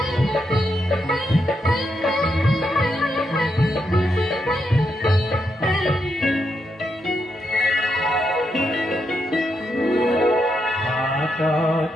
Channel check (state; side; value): normal; both; correlation 0.82